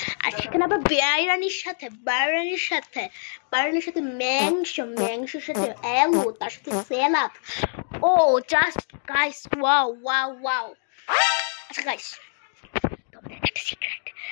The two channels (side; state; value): right; silent; digital silence